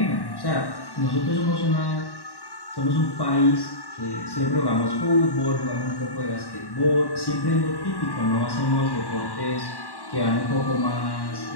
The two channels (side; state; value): right; late; 1.1 ms